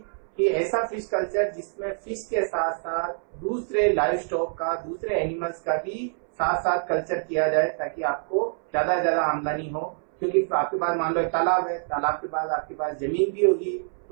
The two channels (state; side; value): silent; left; 61 dB below the other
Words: कि ऐसा फिश कल्चर जिसमें फिश के साथ साथ दूसरे लाइव स्टॉक का, दूसरे एनिमल्स का भी साथ साथ कल्चर किया जाए, ताकि आपको ज्यादा से ज्यादा आमदनी हो। क्योंकि आपके पास मान लो एक तालाब है, तालाब के पास आपके पास जमीन भी होगी,